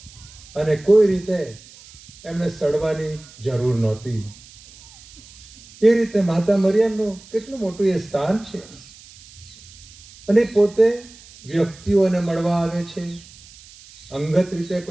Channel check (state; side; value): noise; right; hiss, 22 dB below the sound